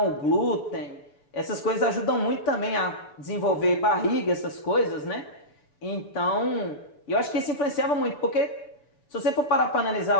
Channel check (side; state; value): right; late; 6.9 ms